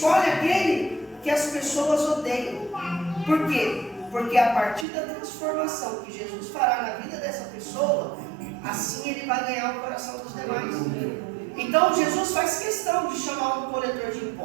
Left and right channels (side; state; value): left; drops out; at 4.9 s